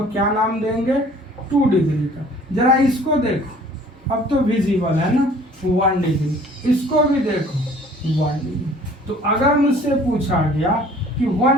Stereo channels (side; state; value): both; normal; correlation 0.52